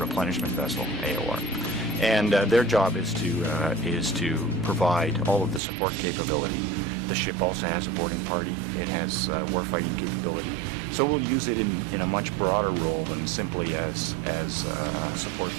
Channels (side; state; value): left; drops out; at 5.6 s